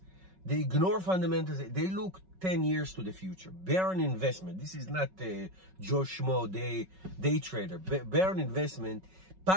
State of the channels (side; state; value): left; late; 5.4 ms